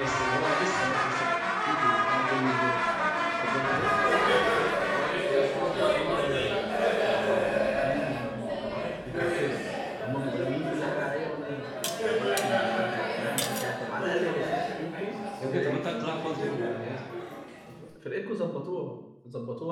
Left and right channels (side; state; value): both; identical; correlation 1.00